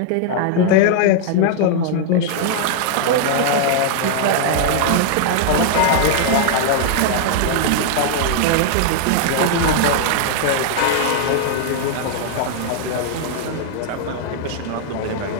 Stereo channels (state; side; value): different; both; correlation 0.00